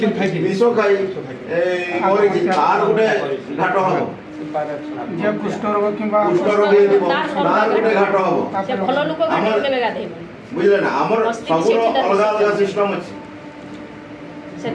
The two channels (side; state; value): both; identical; correlation 1.00